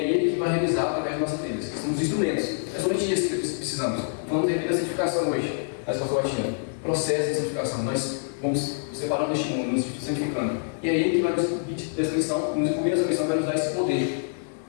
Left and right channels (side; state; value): right; silent; 61 dB below the other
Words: Ele que vai realizar através de nossas vidas. Que são os instrumentos. É somente isso que precisamos. Vamos ter vida da santificação hoje, na escola batina. Processo de santificação. Nós vamos separando este mundo, nos santificando. E é Ele que vai nos incluir nessa missão, nos incluir nessa missão, vai nos dar esse poder.